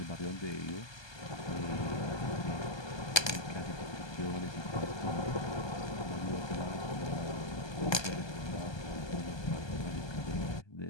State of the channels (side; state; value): right; late; 1.2 ms